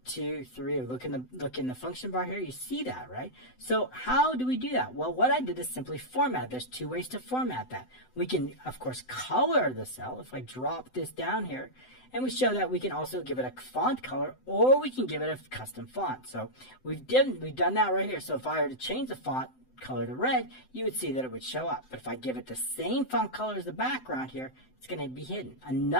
2, 3, look in the function bar here, you see that, right? So how do we do that? Well, what I did is simply format. There's two ways to format that. We can, of course, color the cell. If I drop this down here, and we show that we can also give it a font color, or we can give it a custom font. So we've done that right here. So if I were to change the font color to red, you would see that it would show up. But if I give it the same font color as the background here, it's going to be hidden.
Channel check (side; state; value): right; late; 7.8 ms